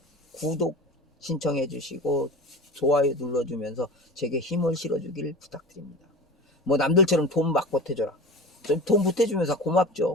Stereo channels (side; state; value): both; normal; correlation 0.33